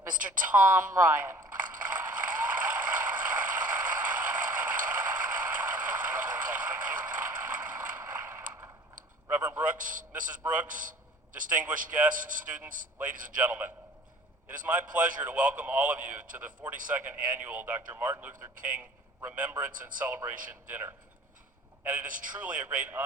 Mr. Tom Ryan. Reverend Brooks, Mrs. Brooks, distinguished guests, students, ladies and gentlemen. It is my pleasure to welcome all of you to the 42nd Annual Dr. Martin Luther King Remembrance and Celebration Dinner. And it is truly a great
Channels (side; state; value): both; normal; correlation 0.48